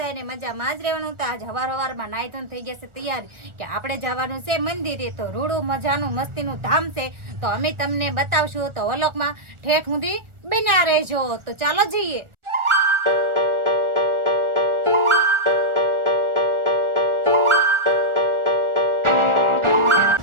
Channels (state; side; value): late; left; 1.4 ms